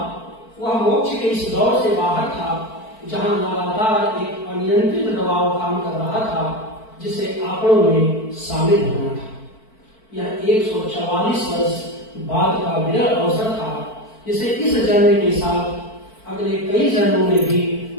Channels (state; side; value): late; right; 4.5 ms